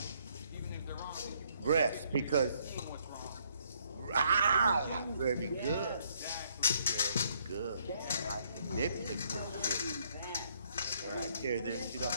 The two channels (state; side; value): inverted; both; correlation -0.68